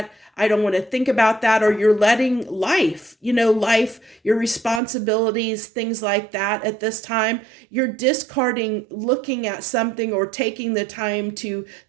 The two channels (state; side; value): drops out; left; at 4.8 s